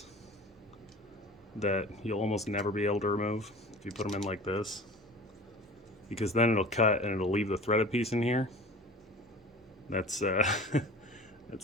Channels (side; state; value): both; normal; correlation 0.39